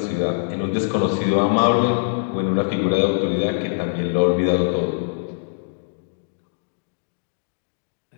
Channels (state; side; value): silent; right; digital silence